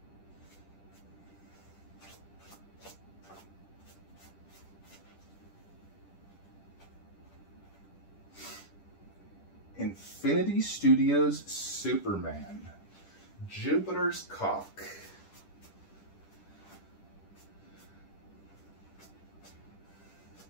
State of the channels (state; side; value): late; right; 10 ms